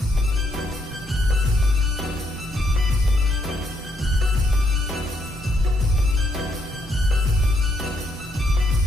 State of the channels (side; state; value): both; normal; correlation 0.74